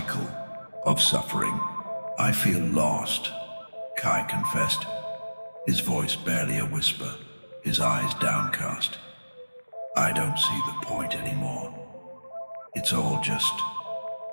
of suffering. "I feel lost," Kai confessed, his voice barely a whisper, his eyes downcast. "I don't see the point anymore. It's all just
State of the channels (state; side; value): inverted; both; correlation -1.00